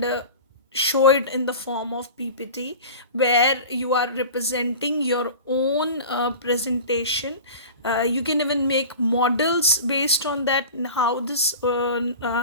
show it in the form of PPT, where you are representing your own presentation. You can even make models based on that, and how this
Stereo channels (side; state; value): both; inverted; correlation -0.35